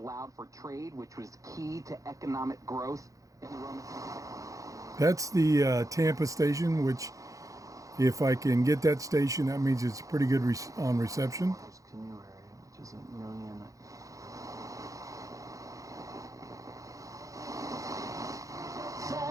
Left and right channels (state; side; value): late; left; 0.16 ms